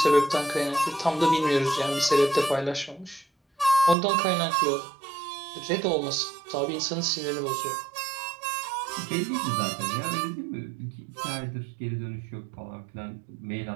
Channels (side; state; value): left; drops out; at 4.0 s